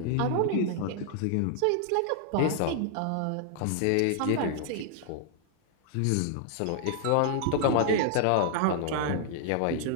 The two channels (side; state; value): both; different; correlation -0.01